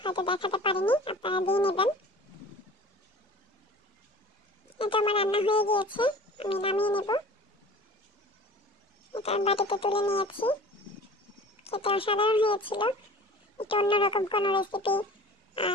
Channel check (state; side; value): normal; both; correlation 0.42